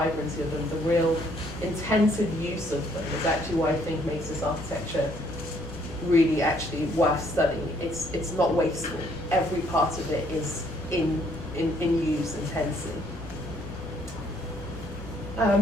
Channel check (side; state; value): left; noise; hum, 14 dB below the sound